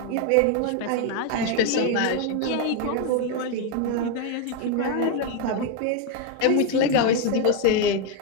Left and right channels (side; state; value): both; different; correlation 0.01